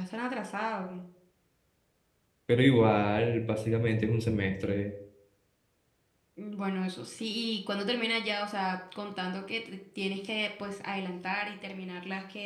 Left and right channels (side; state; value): both; identical; correlation 1.00